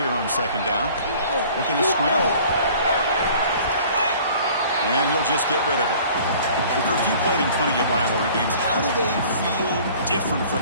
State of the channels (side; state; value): both; inverted; correlation -0.50